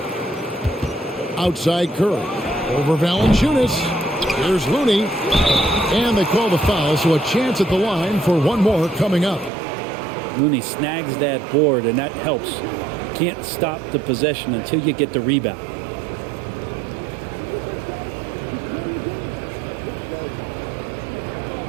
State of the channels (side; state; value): left; drops out; at 9.5 s